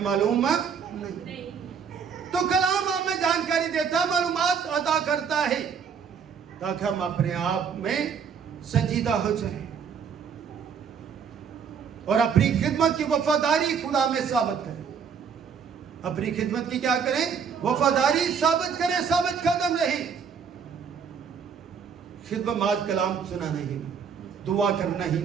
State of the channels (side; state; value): left; quieter; 6.7 dB